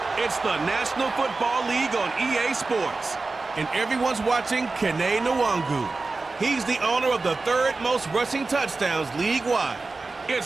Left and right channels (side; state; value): left; quieter; 3.7 dB